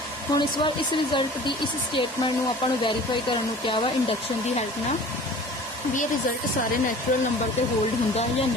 हम इस बार इस रिजल्ट की इस स्टेटमेंट में आपको वेरीफाई करने क्या वा इंडक्शन की हेल्प ना भी ये रिजल्ट सारे नैचुरल नंबर पर होल्ड होंगे या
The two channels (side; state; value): both; normal; correlation 0.44